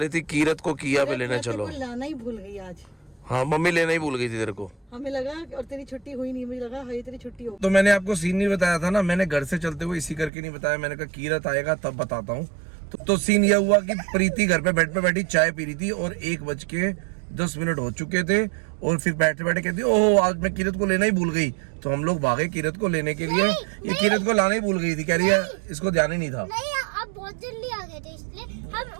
थी कीरत को किया पे लेने चलो। लाना ही भूल गई आज। हाँ, मम्मी लेना ही भूल गई थी तेरे को। हमें लगा और तेरी छुट्टी हुई नहीं, मुझे लगा हाँ तेरी छुट्टी हो। तो मैंने आपको सीन नहीं बताया था ना, मैंने घर से चलते हुए इसी करके नहीं बताया। मैंने कहा कीरत आएगा तब बताता हूँ। तो सीन यह हुआ कि प्रीति घर पे बेड पे बैठी चाय पी रही थी और 1:10 हो चुके थे। और फिर बैठे बैठे कहती ओहो आज मैं कीरत को लेना ही भूल गई। तो हम लोग भागे कीरत को लेने के लिए। ये कीरत को लाना ही भूल गई थी, कह रही है इसको ध्यान ही नहीं था। नहीं, आप बहुत जल्दी आ गए थे, इसलिए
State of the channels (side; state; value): left; drops out; at 10.3 s